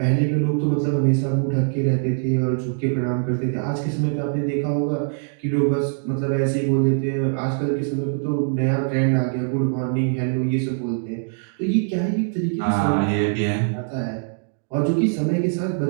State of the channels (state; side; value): silent; left; 64 dB below the other